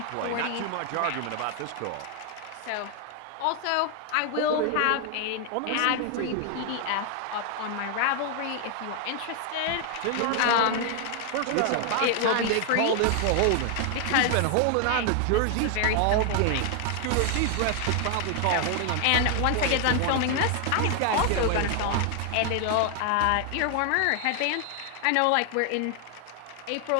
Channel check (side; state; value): both; different; correlation 0.00